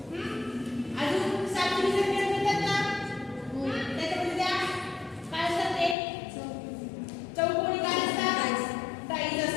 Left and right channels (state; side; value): drops out; right; at 6.0 s